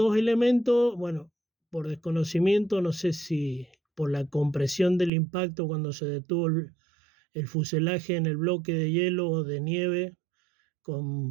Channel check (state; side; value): drops out; left; at 5.1 s